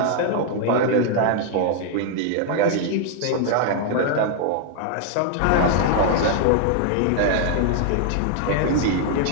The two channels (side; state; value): both; different; correlation 0.00